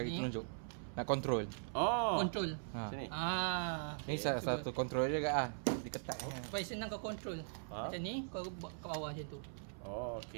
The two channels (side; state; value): left; silent; 51 dB below the other